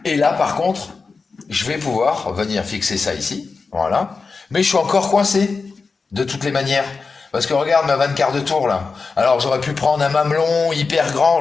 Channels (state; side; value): quieter; right; 4.5 dB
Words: Et là, par contre, je vais pouvoir venir fixer ça ici. Voilà. Mais je suis encore coincé, de toutes les manières. Parce que regarde ma 24 de tour, là. Alors, j'aurais pu prendre un mamelon hyper grand,